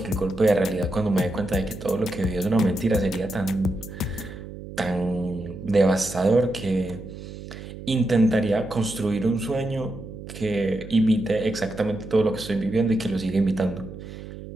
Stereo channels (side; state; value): right; noise; hum, 12 dB below the sound